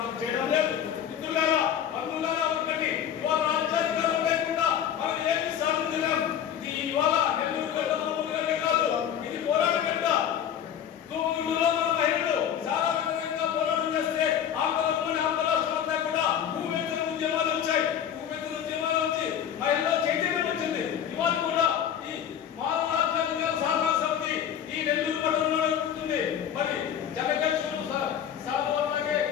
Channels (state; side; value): quieter; right; 9.3 dB